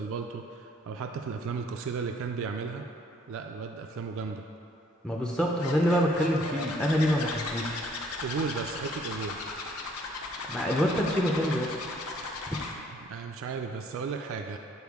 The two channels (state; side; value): normal; both; correlation 0.62